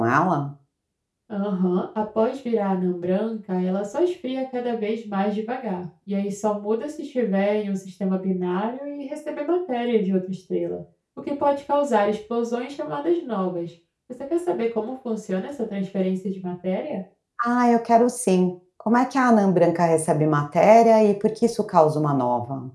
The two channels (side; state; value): both; identical; correlation 1.00